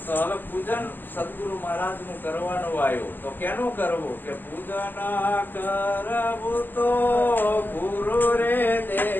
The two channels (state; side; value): late; right; 0.090 ms